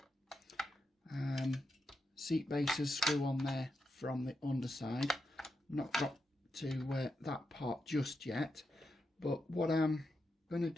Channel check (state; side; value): normal; both; correlation 0.86